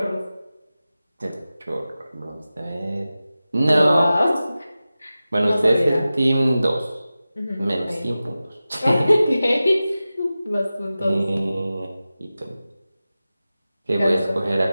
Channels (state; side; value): inverted; both; correlation -0.95